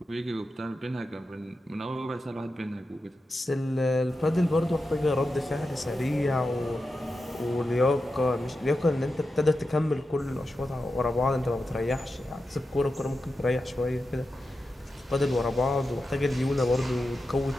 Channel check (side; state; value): both; normal; correlation 0.90